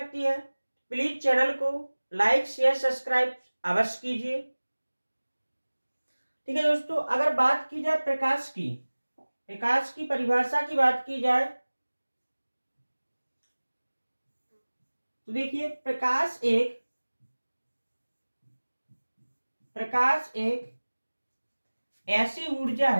है, प्लीज चैनल को लाइक शेयर सब्सक्राइब अवश्य कीजिए। ठीक है दोस्तों, अगर बात की जाए प्रकाश की परिभाषा की बात की जाए तो देखिए प्रकाश एक ऐसी ऊर्जा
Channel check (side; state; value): both; inverted; correlation -1.00